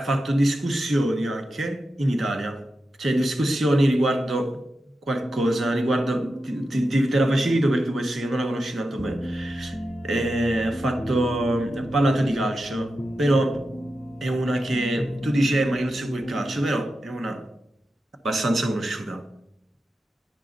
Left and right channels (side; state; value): both; normal; correlation 0.90